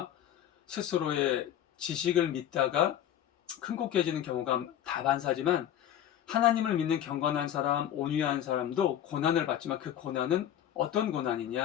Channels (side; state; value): right; quieter; 10.8 dB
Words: 스스로의 지식을 믿다가 큰 곳 깨지는 경우가 다반사지만 하나님을 믿는 경건한 사람, 온유한 사람도 고난을 받지만 그 고난은 어떤